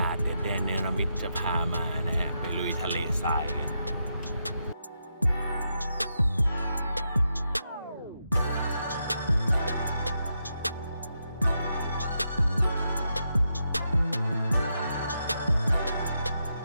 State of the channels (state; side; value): inverted; both; correlation -0.83